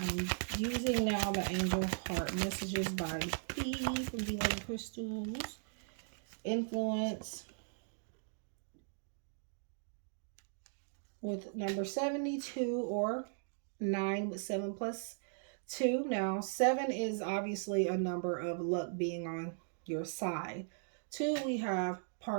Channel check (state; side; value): silent; left; digital silence